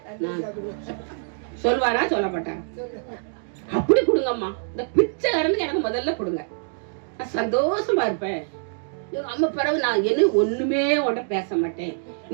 நான் சொல்வாரா சொல்ல மாட்டான். அப்படி கொடுங்கம்மா, இந்த பிச்சைக்காரனுக்கு எனக்கு முதல்ல கொடுங்க, நான் சந்தோஷமா இருப்பேன். எங்க அம்மா பிறகு நான் என்ன ஒண்ணுமே உன்ட பேச மாட்டேன்,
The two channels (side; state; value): left; silent; digital silence